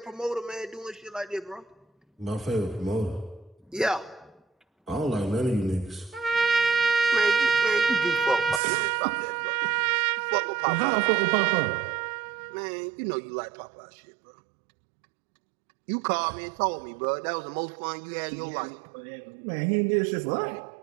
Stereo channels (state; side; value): drops out; left; at 8.6 s